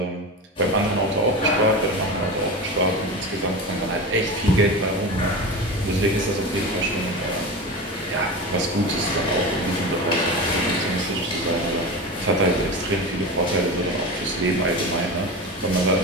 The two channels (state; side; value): normal; both; correlation 0.26